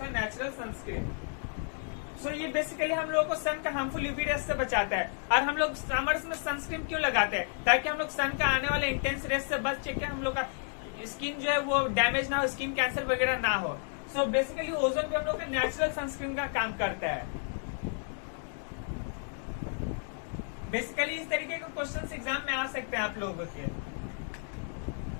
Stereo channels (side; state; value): right; silent; 57 dB below the other